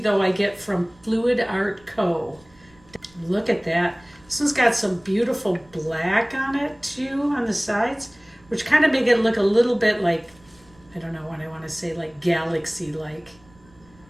I get from Fluid Art Co. Look at that. This one's got some beautiful black on it too on the sides, which kind of make it look a little bit like, I don't know what I want to say, like galaxy-like.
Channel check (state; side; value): noise; right; rumble, 28 dB below the sound